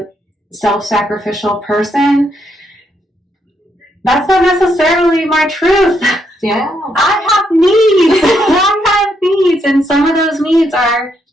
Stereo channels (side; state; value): both; normal; correlation 0.77